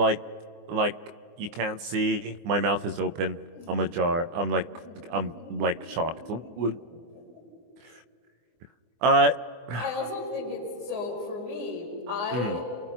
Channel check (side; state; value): left; late; 24 ms